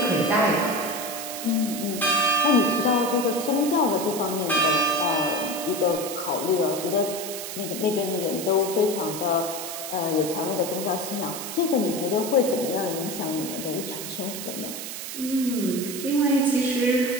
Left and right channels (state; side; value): noise; right; hiss, 7 dB below the sound